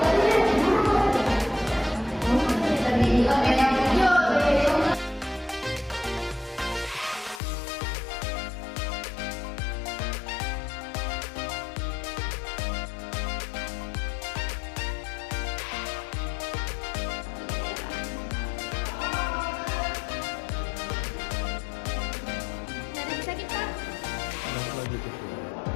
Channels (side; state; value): right; drops out; at 7.4 s